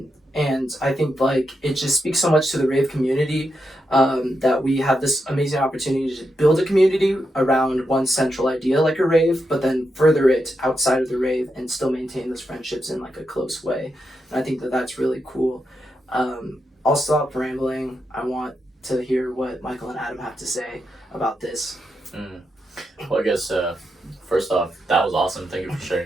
And I think like it just speaks so much to the rave community that we have this amazing opportunity to build a community around one central idea like a rave, but then further it outside of the rave and still maintain those friendships in like a close way. And I think that that's really cool. I'll stop rambling. I want to hear what Michael and Adam have to say about this. Well, I guess first off, that was awesome. Thank you for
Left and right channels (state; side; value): normal; both; correlation 0.85